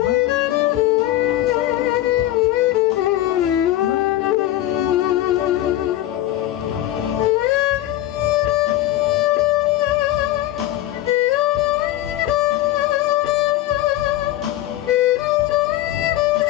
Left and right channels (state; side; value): quieter; right; 14.3 dB